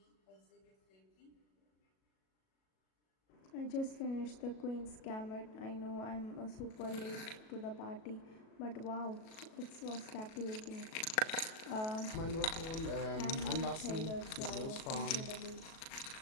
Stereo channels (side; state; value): right; late; 37 ms